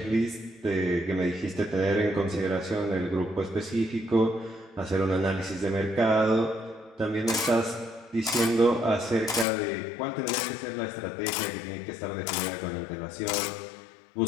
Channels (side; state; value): right; drops out; at 9.5 s